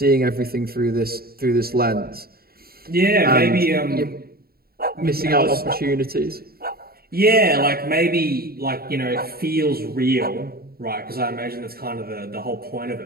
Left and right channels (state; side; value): late; left; 0.44 ms